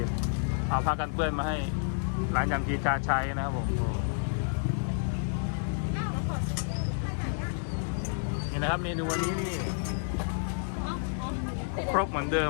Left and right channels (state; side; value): silent; right; digital silence